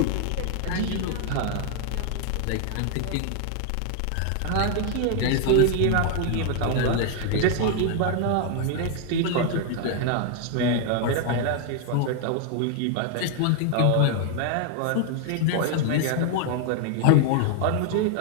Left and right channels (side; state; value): both; different; correlation 0.00